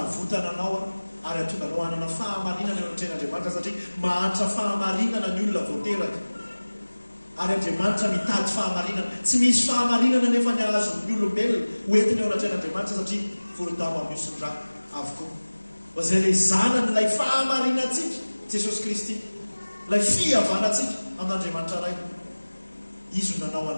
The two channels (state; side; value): inverted; both; correlation -1.00